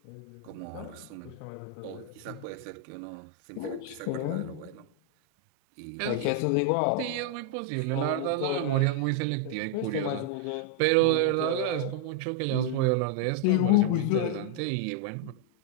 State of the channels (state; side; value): different; both; correlation 0.00